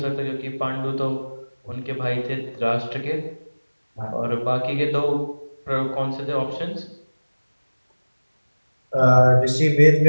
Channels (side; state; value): both; inverted; correlation -1.00